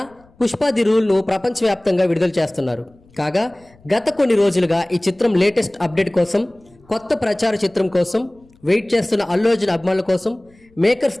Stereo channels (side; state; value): left; noise; rumble, 30 dB below the sound